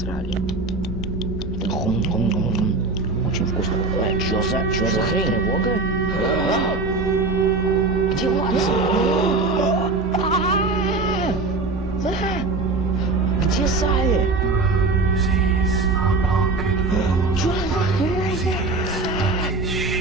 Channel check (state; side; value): quieter; left; 3.5 dB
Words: Очень вкусно. Чё за хрень? Тревога? Где Ватсон? Где Салли? Чё за хрень?